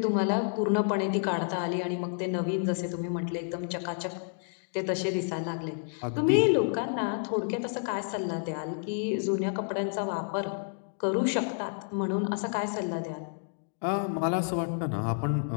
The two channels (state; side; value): silent; right; digital silence